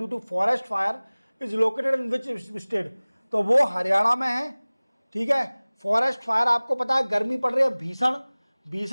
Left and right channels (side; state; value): both; inverted; correlation -1.00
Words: to forest fire is located in which state. तो वो हरियाणा में है। ठीक है, फॉरेस्ट फायर आपको पता है गर्मी पड़ रही है,